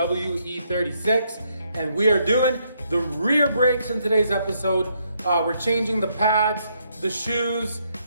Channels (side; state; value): both; inverted; correlation -0.74